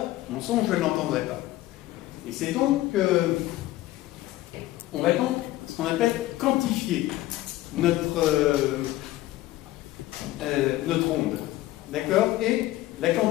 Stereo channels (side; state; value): right; quieter; 16.2 dB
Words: mon son, je ne l'entendrais pas. Et c'est donc, on va donc, ce qu'on appelle quantifier notre onde. D'accord? Et la